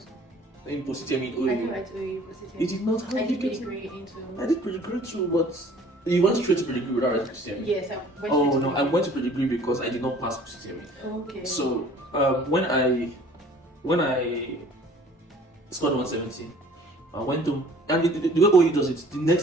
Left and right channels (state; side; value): normal; both; correlation 0.51